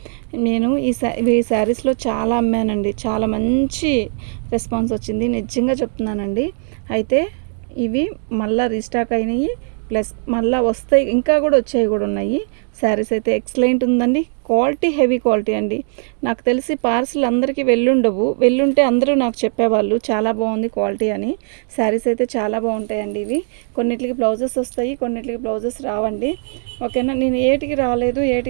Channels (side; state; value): left; silent; 57 dB below the other